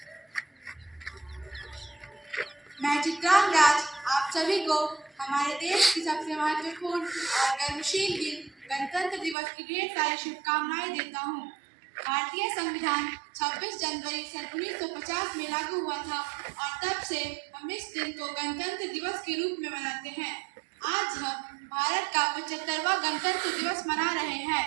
मैं चित्रांग राज आप सभी को हमारे देश की सबसे महत्वपूर्ण और गर्मशील दिन गणतंत्र दिवस की ढेर सारी शुभकामनाएं देता हूँ। भारतीय संविधान 26 जनवरी सन 1950 में लागू हुआ था और तब से हम इस दिन को गणतंत्र दिवस के रूप में मनाते हैं। आज हम भारत का 75वां गणतंत्र दिवस मना रहे हैं।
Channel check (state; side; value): drops out; left; at 9.3 s